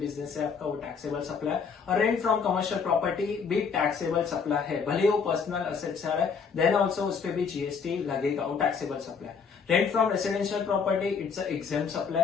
से आपका वो टैक्सेबल सप्लाई, और रेंट फ्रॉम कमर्शियल प्रॉपर्टी भी टैक्सेबल सप्लाई है, भले वो पर्सनल असेट से आ रहा है, देन ऑल्सो उस पर भी जीएसटी लगेगा, वो taxable supply. Rent from residential property, it's an exempt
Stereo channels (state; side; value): quieter; right; 5.8 dB